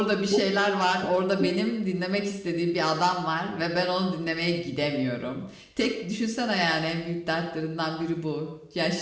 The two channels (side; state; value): both; identical; correlation 1.00